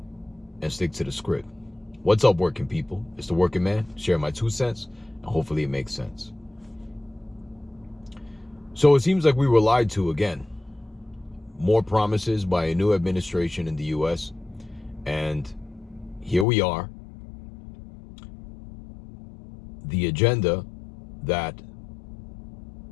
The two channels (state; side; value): drops out; right; at 16.4 s